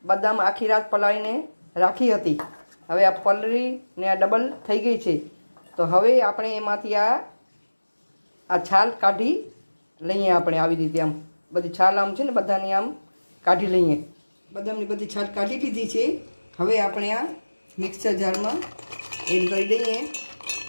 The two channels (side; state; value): both; inverted; correlation -1.00